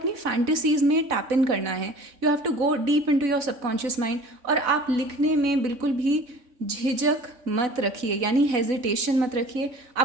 फैंटेसीज में टैप इन करना है। You have to go deep into your subconscious mind. और आप लिखने में बिल्कुल भी झिझक मत रखिए, यानी हेजिटेशन मत रखिए।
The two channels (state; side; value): late; left; 4.0 ms